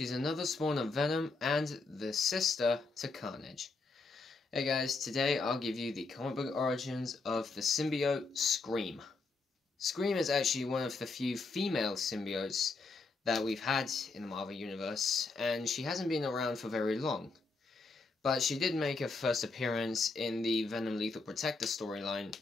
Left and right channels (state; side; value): quieter; right; 3.9 dB